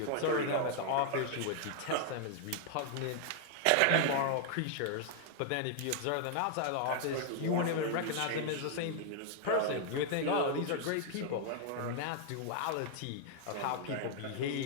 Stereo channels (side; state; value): both; different; correlation 0.00